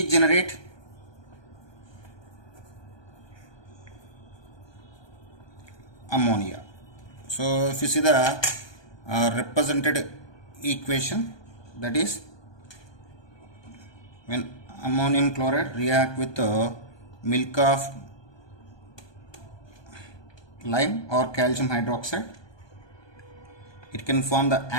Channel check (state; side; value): late; right; 1.2 ms